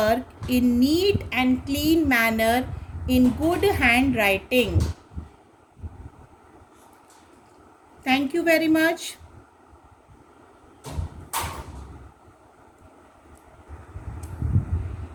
in neat and clean manner in good handwriting. Thank you very much.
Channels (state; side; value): identical; both; correlation 1.00